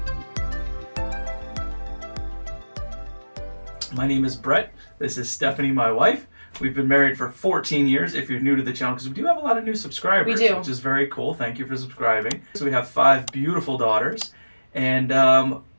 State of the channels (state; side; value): inverted; both; correlation -1.00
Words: My name is Brett. This is Stephanie, my wife. We've been married for 14 years, if you're new to the channel, because we do have a lot of new subscribers. We do. Which is very cool. Thank you for subscribing. So we have 5 beautiful daughters, and